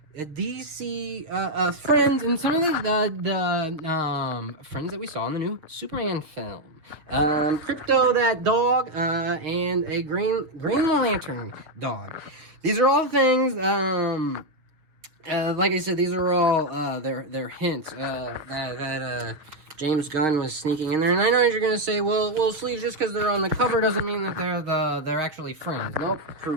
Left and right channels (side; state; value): left; late; 6.4 ms